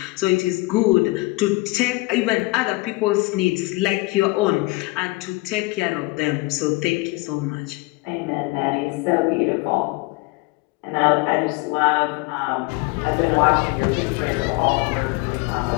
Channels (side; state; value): right; quieter; 23.4 dB